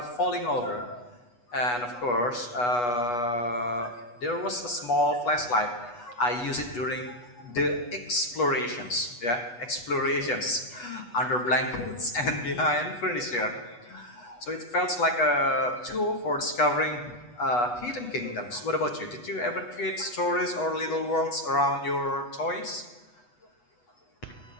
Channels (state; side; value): late; right; 8.2 ms